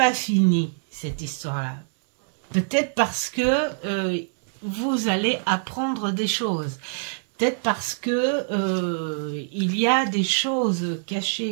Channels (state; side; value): silent; left; digital silence